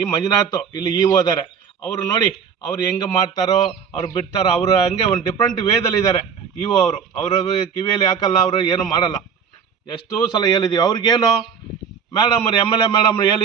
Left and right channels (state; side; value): quieter; left; 6.9 dB